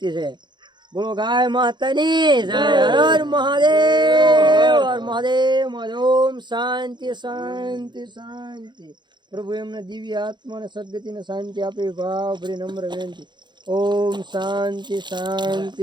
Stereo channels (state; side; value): late; left; 0.22 ms